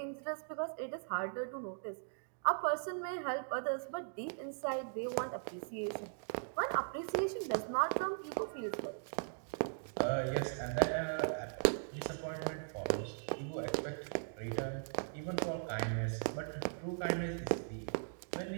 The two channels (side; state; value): left; silent; digital silence